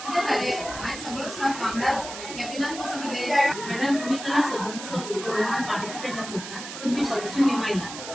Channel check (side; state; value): right; noise; hiss, 10 dB below the sound